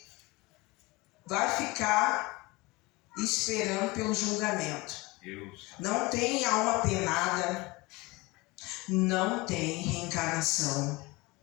vai ficar esperando pelo julgamento. Não tem alma penada, não tem reencarnação.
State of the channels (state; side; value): quieter; right; 23.0 dB